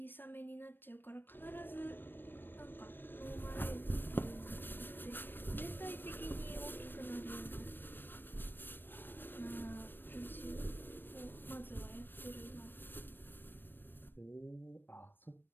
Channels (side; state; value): right; late; 0.095 ms